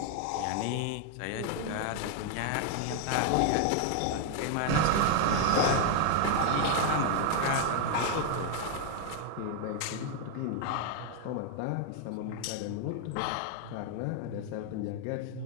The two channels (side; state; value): both; different; correlation 0.00